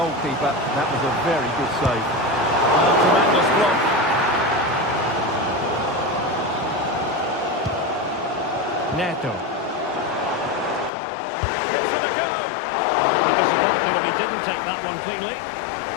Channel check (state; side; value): drops out; right; at 10.9 s